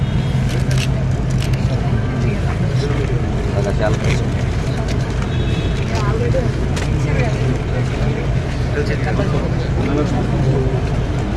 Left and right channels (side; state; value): both; identical; correlation 1.00